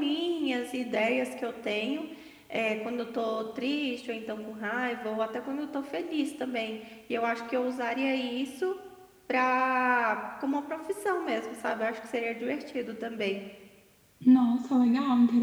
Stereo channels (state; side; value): identical; both; correlation 1.00